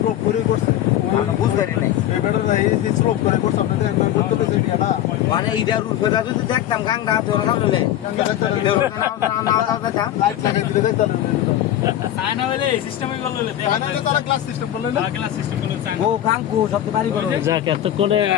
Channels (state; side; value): quieter; right; 12.1 dB